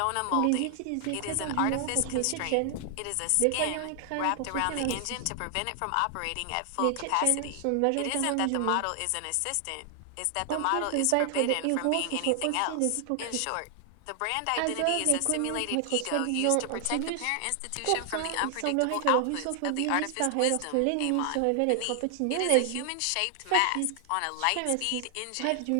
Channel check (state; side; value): different; both; correlation 0.00